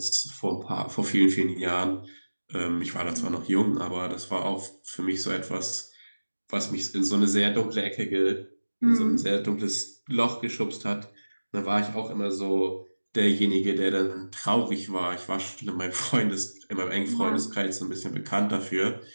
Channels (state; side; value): inverted; both; correlation -1.00